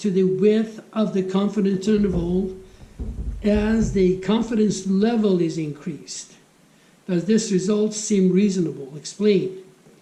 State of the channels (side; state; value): both; identical; correlation 1.00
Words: the width of the confidence interval as the confidence level is increased. Does this result seem reasonable? Explain.